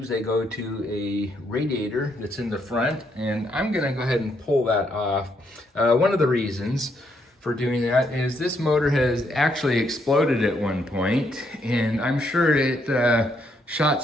they go to a radiator that's in the front, and I'm gonna go ahead and pull that off. One of the reasons for doing that is this motor has actually exploded at one point, and I'm sure it shot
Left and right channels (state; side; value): normal; both; correlation 0.75